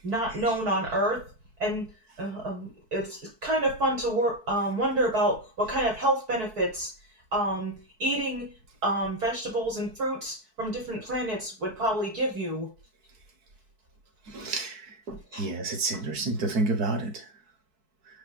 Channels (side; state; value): left; late; 4.6 ms